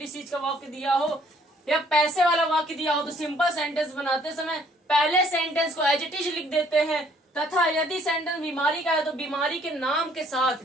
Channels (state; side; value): normal; both; correlation 0.62